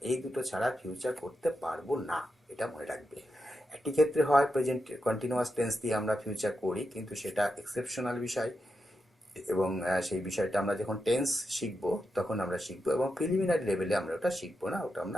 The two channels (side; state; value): both; normal; correlation 0.87